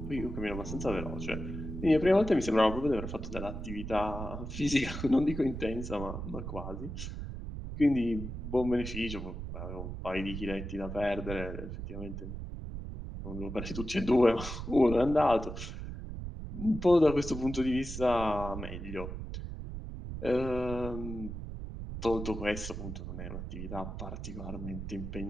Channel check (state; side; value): noise; right; rumble, 7 dB below the sound